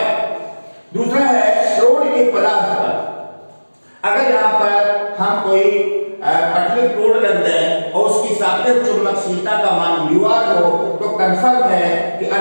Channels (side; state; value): both; inverted; correlation -1.00